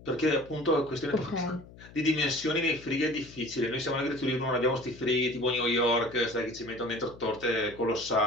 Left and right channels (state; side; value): noise; left; hum, 20 dB below the sound